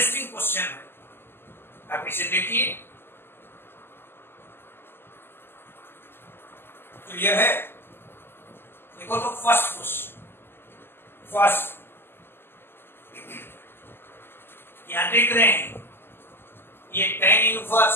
क्वेश्चन है, आप इसे देखिए। क्लियर है? देखो तो फर्स्ट क्वेश्चन, यहां देख रहे हैं ये tan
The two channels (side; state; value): right; late; 0.11 ms